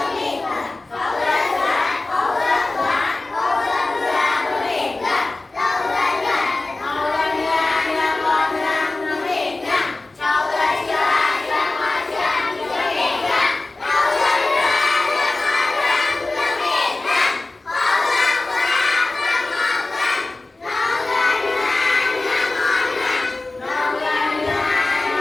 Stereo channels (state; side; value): quieter; right; 3.1 dB